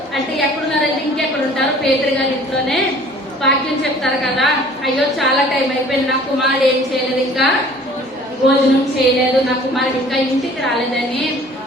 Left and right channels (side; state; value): both; normal; correlation 0.51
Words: అంటే ఎక్కడున్నారంటే ఇంకెక్కడ ఉంటారు? పేతురు గారి ఇంట్లోనే వాక్యం చెప్తారు కదా. అయ్యో చాలా టైం అయిపోయింది, నా కుమారుడు ఏం చేయలేదు, ఇంకా భోజనం చేయలేదు, నా కుమారుడు ఇంకా ఇంటికి రాలేదని